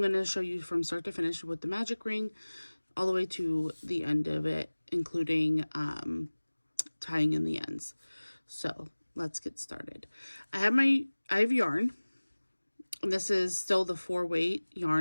to show you from start to finish with the magic ring all the way to the end of it, including tying in the ends. So let's get started. I have yarn. And this is still the 4-weight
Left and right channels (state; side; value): inverted; both; correlation -1.00